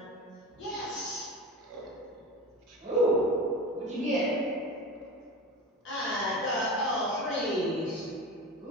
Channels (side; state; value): both; normal; correlation 0.29